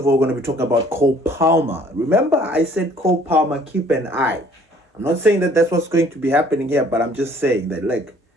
all, we're going to be talking about Cole Palmer. Remember, I said Cole Palmer, keep an eye. I'm not saying that that's what's going to be happening here, but I'm just saying that,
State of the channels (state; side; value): normal; both; correlation 0.57